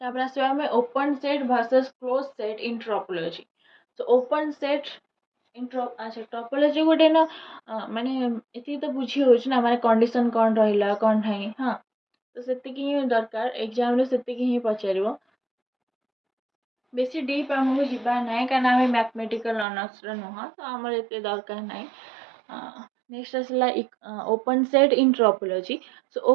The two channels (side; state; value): left; drops out; at 19.7 s